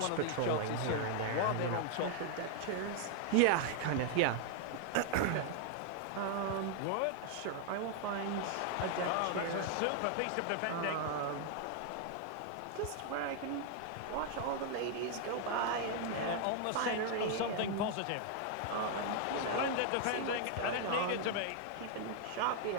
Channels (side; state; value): both; different; correlation 0.00